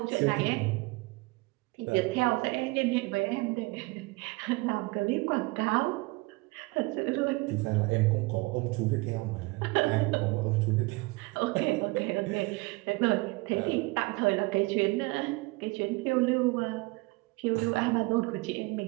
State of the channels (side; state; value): left; quieter; 24.7 dB